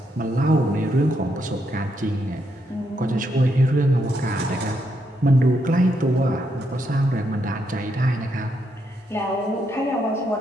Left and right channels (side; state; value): both; normal; correlation 0.78